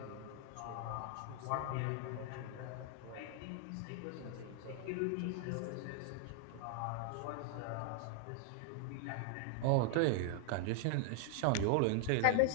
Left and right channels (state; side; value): different; both; correlation 0.00